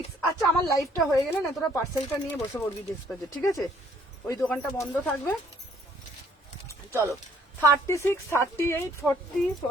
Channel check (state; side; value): normal; both; correlation 0.63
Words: আচ্ছা আমার লাইফটা হয়ে গেলে না তোরা পার্সেলটা নিয়ে বসে পড়বি ডিসপ্লেতে। ঠিক আছে ওই দোকানটা বন্ধ থাকবে। চলো 36, 38, 40,